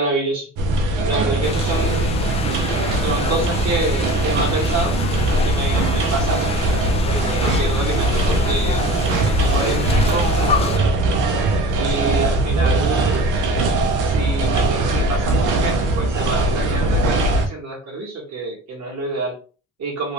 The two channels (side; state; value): both; normal; correlation 0.39